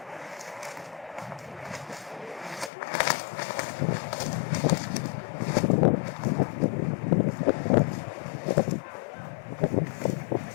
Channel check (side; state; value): right; drops out; at 2.7 s